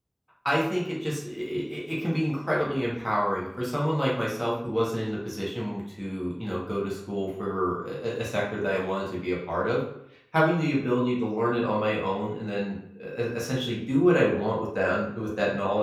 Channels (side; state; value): both; identical; correlation 1.00